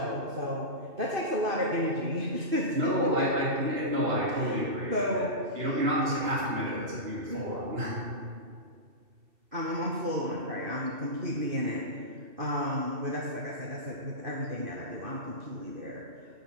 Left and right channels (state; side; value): late; left; 2.7 ms